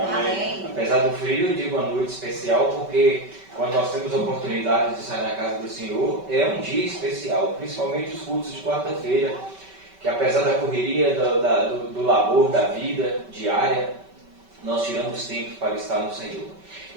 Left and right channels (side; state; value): left; late; 5.2 ms